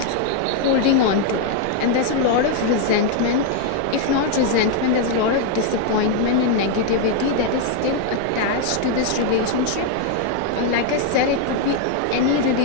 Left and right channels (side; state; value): both; different; correlation 0.01